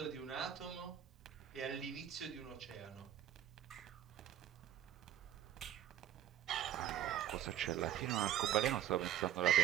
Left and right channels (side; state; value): left; quieter; 11.3 dB